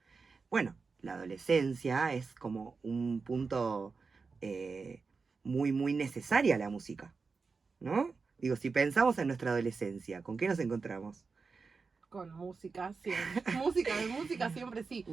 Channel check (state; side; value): quieter; left; 4.7 dB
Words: Bueno, la adolescencia es como un punto muy, muy necesaria la música, ¿no? Digo, si pensamos en nuestra adolescencia, ¿con qué nos encontramos? Con música, siempre. Música siempre sí.